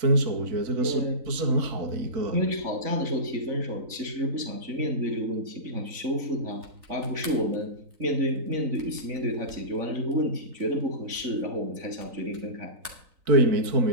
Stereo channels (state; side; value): late; left; 3.9 ms